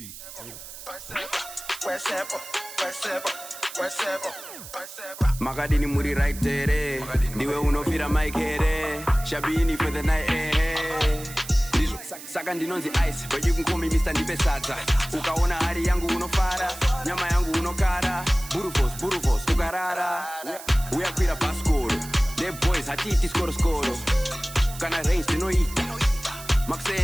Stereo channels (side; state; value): right; noise; hiss, 14 dB below the sound